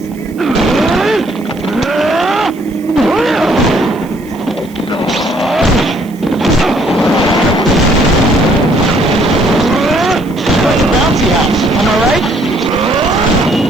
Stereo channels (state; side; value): noise; right; hiss, 25 dB below the sound